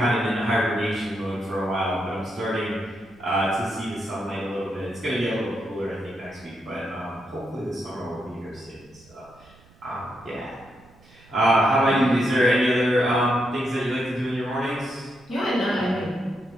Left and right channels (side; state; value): right; noise; rumble, 27 dB below the sound